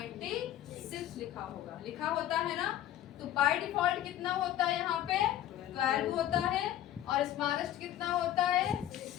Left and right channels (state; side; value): quieter; right; 12.3 dB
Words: लिखा होगा, लिखा होता है ना। तो बाय डिफॉल्ट कितना होता है, यहाँ पे 12 होता है और स्मॉलेस्ट कितना होता है,